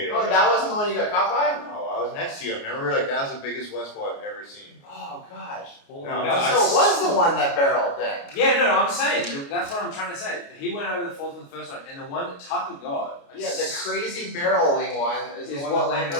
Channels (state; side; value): late; right; 29 ms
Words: it. Oh, over. that wasn't the one you got caught by? No, I was next to you. I remember like that was the biggest West Bowl I've ever seen. Oh gosh. No, So it was the one that barreled then. Yeah, no, I'm saying that's what I'm trying to say. He went over the falls on the first one, and the one that Tucker got. Yeah, the crazy barreling one is the Is one what that landed on